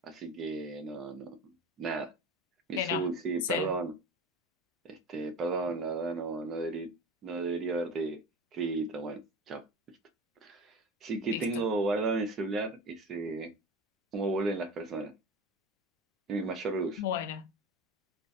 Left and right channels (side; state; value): both; normal; correlation 0.32